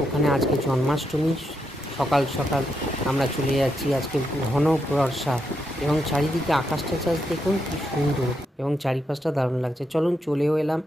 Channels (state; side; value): normal; both; correlation 0.81